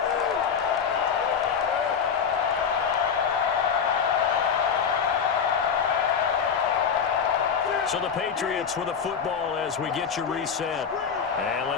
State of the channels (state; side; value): quieter; right; 6.8 dB